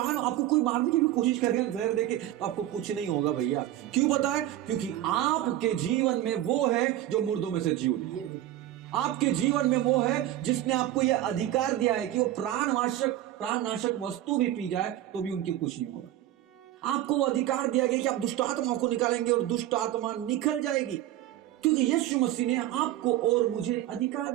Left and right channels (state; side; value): quieter; left; 13.3 dB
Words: आपको कोई मारने की भी कोशिश करेगा जहर देके, तो आपको कुछ नहीं होगा भैया। क्यों पता है? क्योंकि आपके जीवन में वो है जो मुर्दों में से जी उठी। आपके जीवन में वो है जिसने आपको यह अधिकार दिया है कि वो प्राणनाशक वस्तु भी पी जाए तो भी उनकी कुछ नहीं होगा। आपको वो अधिकार दिया गया कि आप दुष्ट आत्माओं को निकालेंगे और दुष्ट आत्मा निकल जाएगी, क्योंकि यीशु मसीह ने आपको और मुझे अधिकार